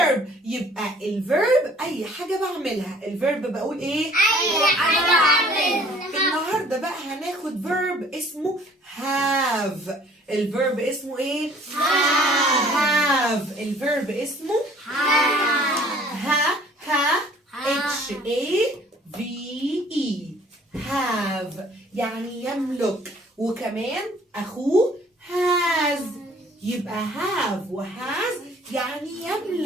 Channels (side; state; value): both; normal; correlation 0.55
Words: يبقى الفيرب اي حاجه بعملها. الفيرب بقول ايه؟ أي حاجة بعملها. النهارده بقى هناخد verb اسمه have. الفيرب اسمه ايه؟ have. الفيرب اسمه H-A-V-E have يعني يملك. وكمان أخوه has. يبقى have وhas يعني